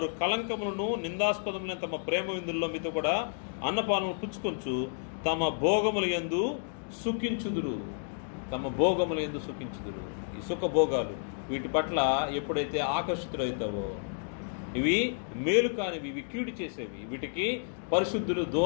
కలంకములను నిందాస్పదములైన తమ ప్రేమ విందుల్లో మీతో కూడా అన్నపానములు పుచ్చుకొంచు తమ భోగముల యందు సుఖించుదురు. తమ భోగముల యందు సుఖించుదురు. ఈ సుఖభోగాలు వీటి పట్ల ఎప్పుడైతే ఆకర్షితులవుతావో, ఇవి మేలు కానివి, ఇవి కీడు చేసేవి, వీటికి పరిశుద్ధులు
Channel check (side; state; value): right; silent; digital silence